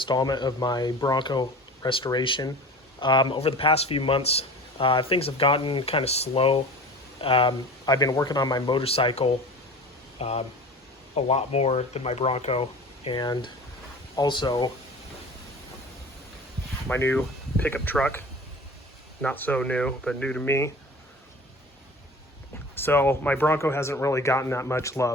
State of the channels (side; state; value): both; normal; correlation 0.38